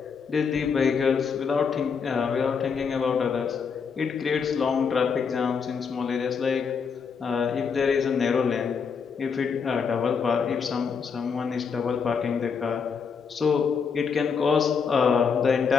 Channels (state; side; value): quieter; right; 6.0 dB